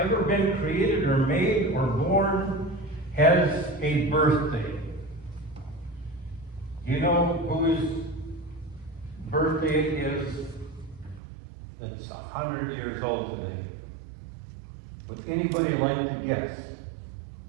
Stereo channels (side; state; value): left; drops out; at 11.2 s